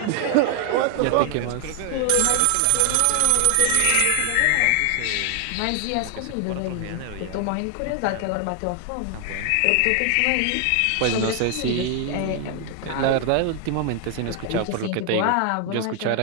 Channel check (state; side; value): different; both; correlation 0.00